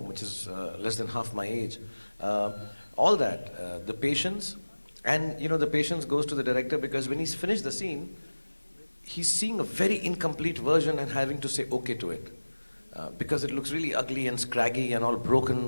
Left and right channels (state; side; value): inverted; both; correlation -1.00